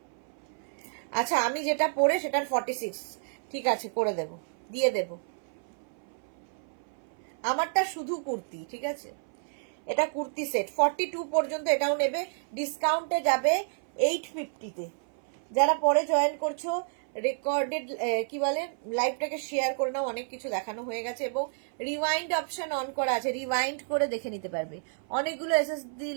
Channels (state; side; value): silent; left; 58 dB below the other